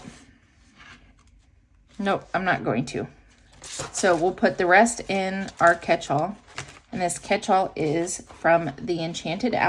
Nope, I'm not going to. So we'll put the rest in our catch-all. And this catch-all is from the Enchanted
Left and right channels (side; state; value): both; identical; correlation 1.00